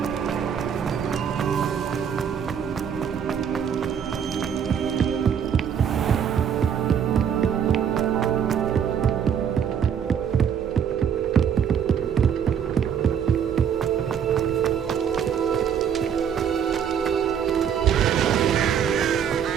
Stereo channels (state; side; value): quieter; left; 8.1 dB